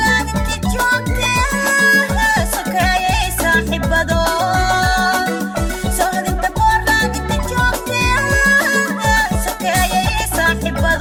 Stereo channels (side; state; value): both; identical; correlation 1.00